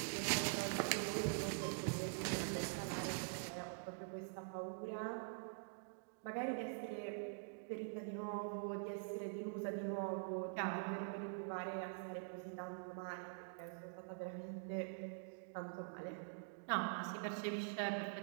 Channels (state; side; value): silent; left; digital silence